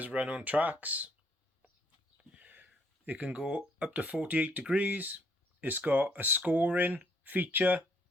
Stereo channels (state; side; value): normal; both; correlation 0.67